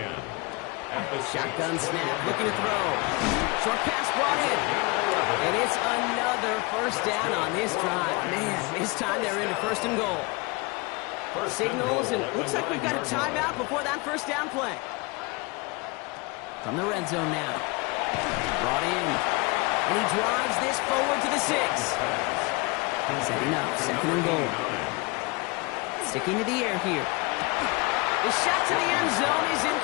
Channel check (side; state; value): right; quieter; 26.7 dB